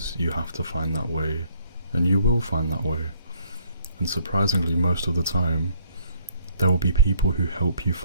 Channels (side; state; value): both; inverted; correlation -0.64